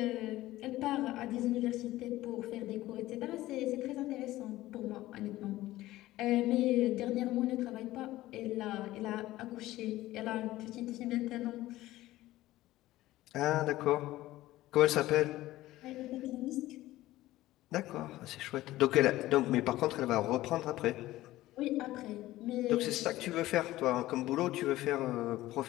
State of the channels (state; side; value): quieter; right; 16.3 dB